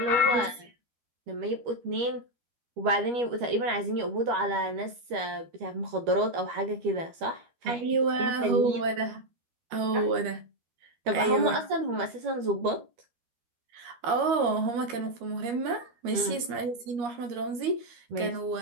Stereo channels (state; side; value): late; left; 13 ms